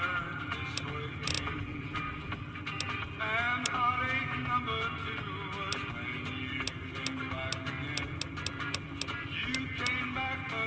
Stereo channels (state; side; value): identical; both; correlation 1.00